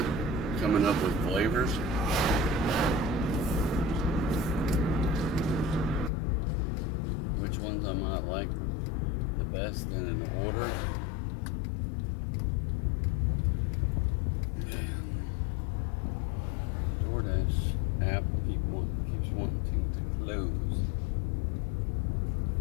coming up with flavors. Which ones I might like the best in an order. DoorDash app keeps wanting to close.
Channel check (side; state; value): right; drops out; at 6.1 s